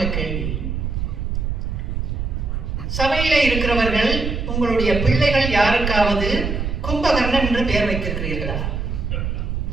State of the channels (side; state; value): right; noise; rumble, 2 dB below the sound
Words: கேள்வி. சபையிலே இருக்கிறவர்கள், உங்களுடைய பிள்ளைகள் யாருக்காவது கும்பகர்ணன் என்று பெயர் வைத்திருக்கிறீர்களா?